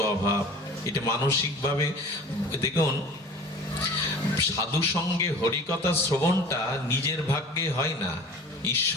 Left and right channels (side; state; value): both; normal; correlation 0.42